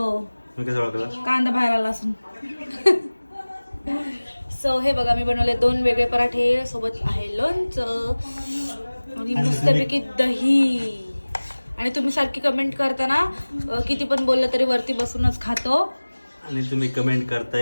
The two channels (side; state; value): both; inverted; correlation -1.00